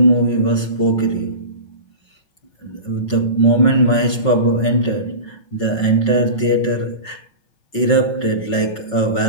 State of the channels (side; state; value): right; late; 5.4 ms